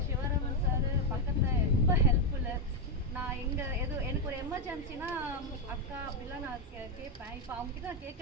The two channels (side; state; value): both; normal; correlation 0.04